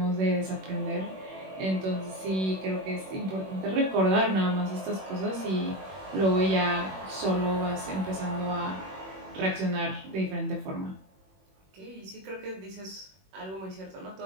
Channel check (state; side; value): late; left; 21 ms